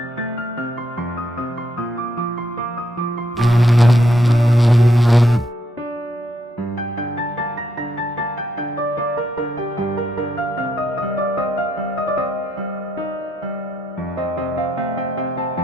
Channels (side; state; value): both; normal; correlation 0.76